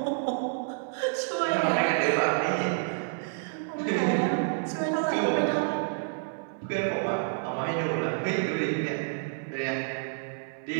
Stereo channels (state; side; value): silent; left; digital silence